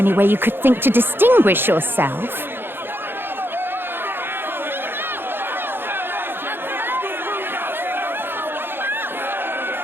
way you could think to distinguish yourself?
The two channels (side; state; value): left; late; 0.10 ms